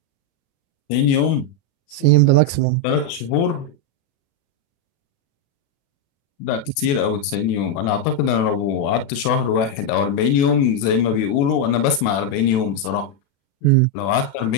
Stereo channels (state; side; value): late; right; 36 ms